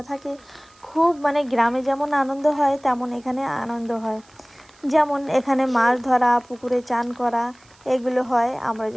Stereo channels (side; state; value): right; noise; hiss, 29 dB below the sound